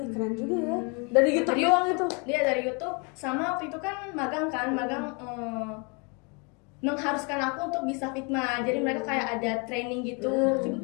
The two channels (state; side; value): quieter; right; 32.9 dB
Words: juga ya. Dari YouTube doang itu. Dia dari YouTube, sama waktu itu kan magang mengharuskan aku untuk bisa Figma. Jadi mereka kayak ada training gitu.